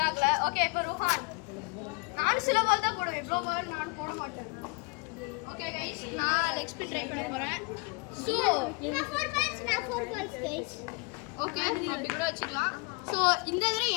ஓகே இப்போ ருஹான். நானும் சில பால் தான் போடுவேன், இவ்வளோ பால் நானும் போட மாட்டேன். ஓகே கைஸ், நான் லெக் ஸ்பின் ட்ரை பண்ண போகிறேன். ஸோ நான் 4 balls கைஸ். ஓகே அப்படி கூட வச்சுக்கலாம். ஸோ இந்த தடவை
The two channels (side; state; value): right; quieter; 28.9 dB